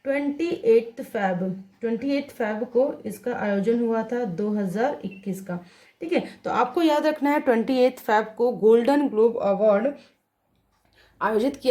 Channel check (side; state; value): both; identical; correlation 1.00